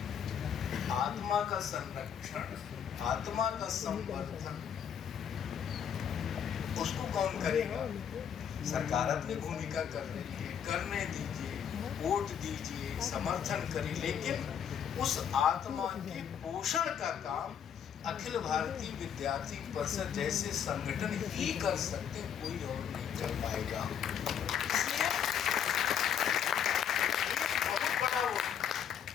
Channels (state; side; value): quieter; right; 8.4 dB